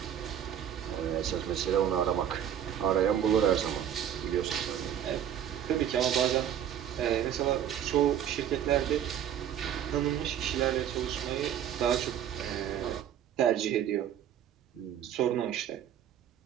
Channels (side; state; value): left; quieter; 9.9 dB